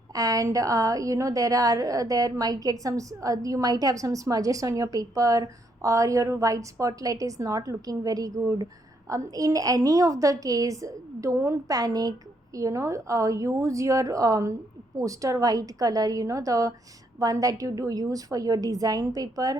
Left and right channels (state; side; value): normal; both; correlation 0.74